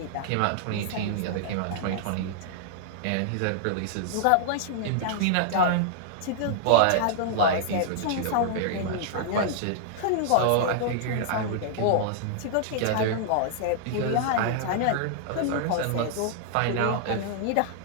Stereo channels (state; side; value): different; both; correlation -0.01